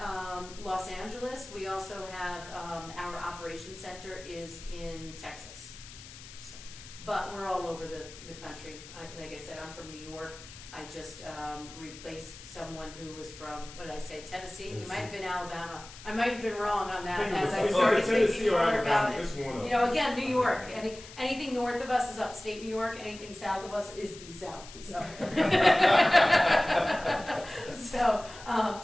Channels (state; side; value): noise; left; hiss, 16 dB below the sound